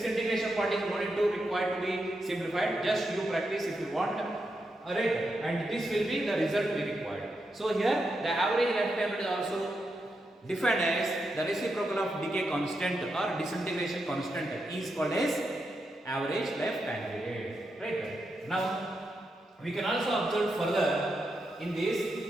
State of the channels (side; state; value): both; normal; correlation 0.85